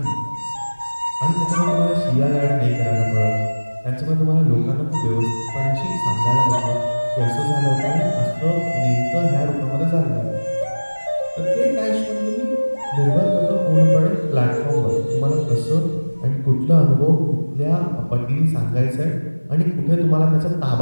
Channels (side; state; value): both; inverted; correlation -1.00